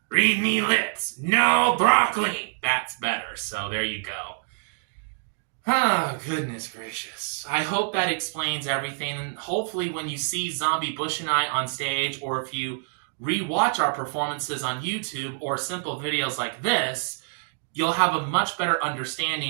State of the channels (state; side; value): silent; left; digital silence